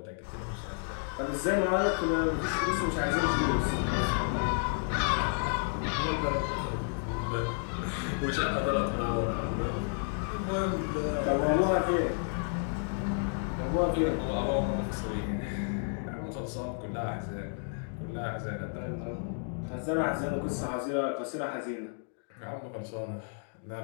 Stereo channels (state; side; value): silent; right; 57 dB below the other